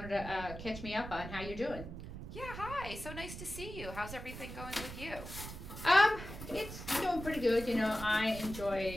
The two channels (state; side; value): noise; right; rumble, 10 dB below the sound